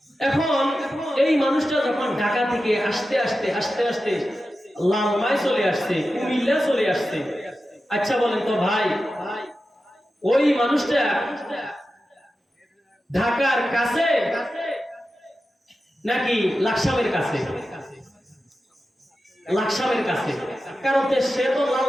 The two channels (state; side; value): normal; both; correlation 0.92